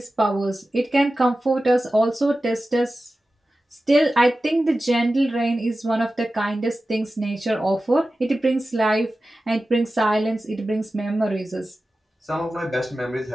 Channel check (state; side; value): normal; both; correlation 0.94